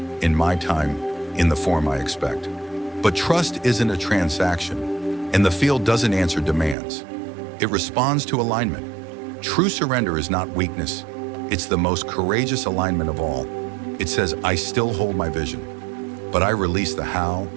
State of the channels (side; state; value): left; drops out; at 6.8 s